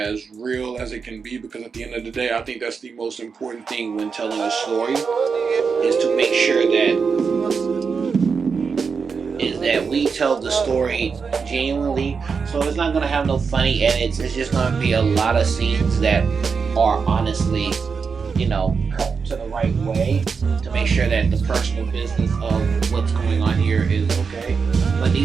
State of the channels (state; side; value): quieter; left; 5.5 dB